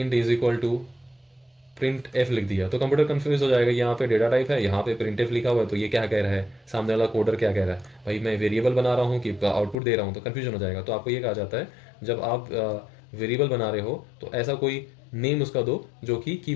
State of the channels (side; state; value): right; drops out; at 9.8 s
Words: is equal to printf लिख दिया तो कंप्यूटर कंफ्यूज हो जाएगा। यहाँ पे डेटा टाइप है, यहाँ पे प्रिंट एफ लिखा हुआ है, तो ये क्या कह रहा है, सामने वाला कोडर क्या कह रहा है, भाई मैं वेरिएबल बना रहा हूँ कि आउटपुट दे रहा हूँ, तो कंफ्यूजन हो जाएगा। तो आपको ये कहा जाता है, जब आप वेरिएबल बना रहे हो तो ऐसा कोई नेम उसका दो जो कि